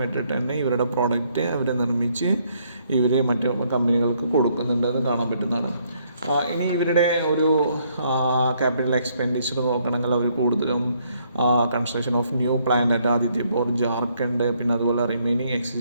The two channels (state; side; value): inverted; both; correlation -0.70